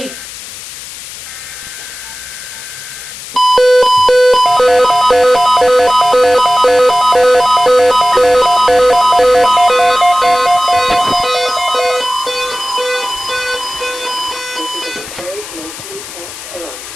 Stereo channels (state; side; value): noise; left; hiss, 13 dB below the sound